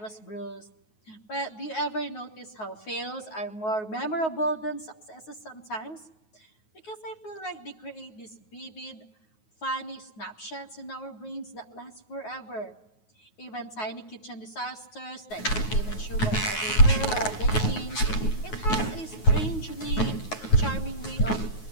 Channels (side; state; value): right; late; 9.4 ms